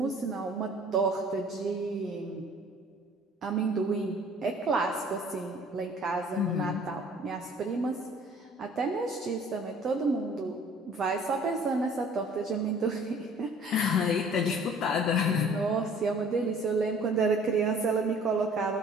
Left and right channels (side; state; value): both; normal; correlation 0.52